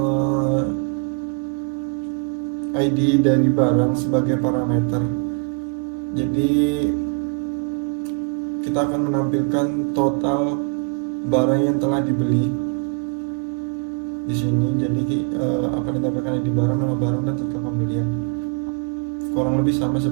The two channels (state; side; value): quieter; left; 33.9 dB